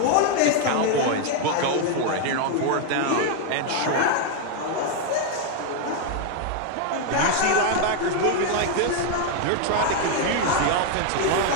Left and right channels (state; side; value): different; both; correlation 0.01